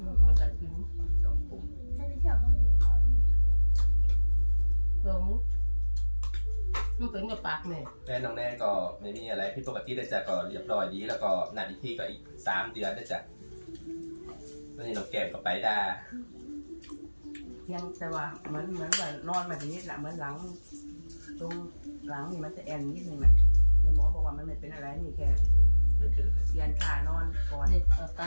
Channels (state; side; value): inverted; both; correlation -1.00